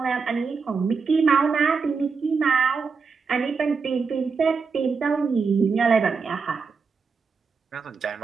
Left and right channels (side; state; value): left; quieter; 5.1 dB